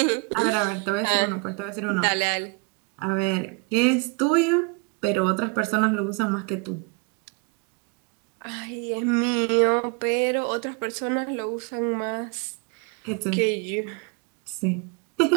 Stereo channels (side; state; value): left; quieter; 31.9 dB